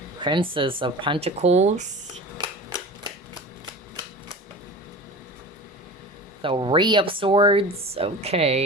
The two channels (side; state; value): both; normal; correlation 0.35